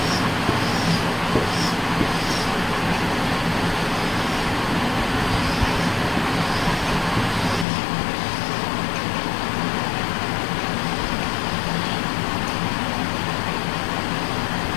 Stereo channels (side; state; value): right; drops out; at 7.7 s